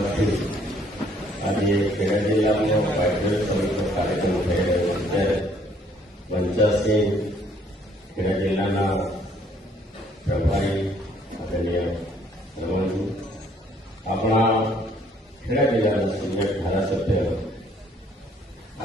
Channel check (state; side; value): normal; both; correlation 0.63